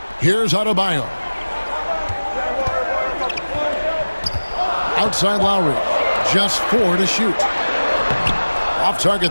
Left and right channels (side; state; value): both; inverted; correlation -1.00